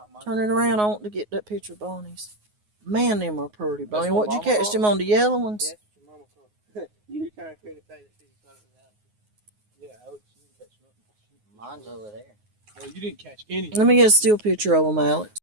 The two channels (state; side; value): late; left; 9.5 ms